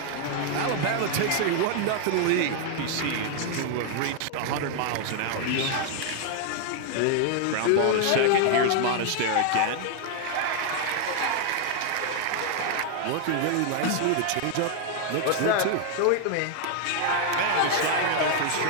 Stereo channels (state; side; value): different; both; correlation 0.00